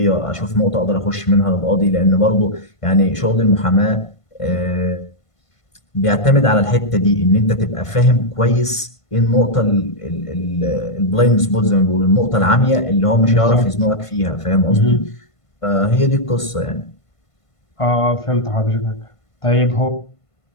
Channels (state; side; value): late; right; 1.5 ms